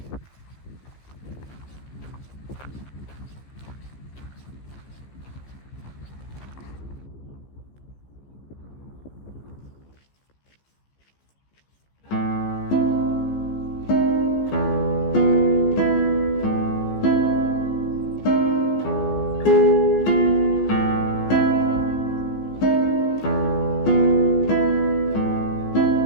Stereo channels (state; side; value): late; right; 15 ms